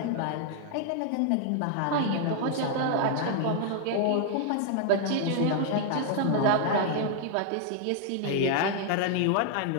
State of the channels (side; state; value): both; different; correlation 0.00